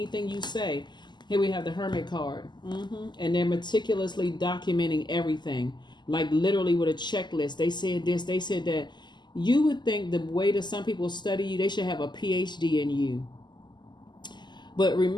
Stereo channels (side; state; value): right; late; 0.21 ms